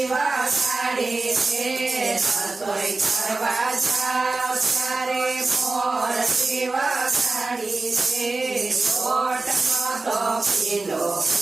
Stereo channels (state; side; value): quieter; left; 3.5 dB